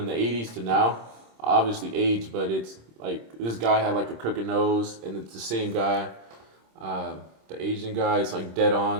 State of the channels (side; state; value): left; late; 26 ms